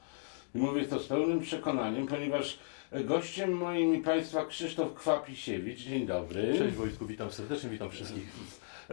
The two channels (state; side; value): silent; right; digital silence